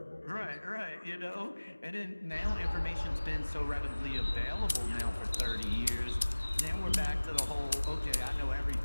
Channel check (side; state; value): both; inverted; correlation -1.00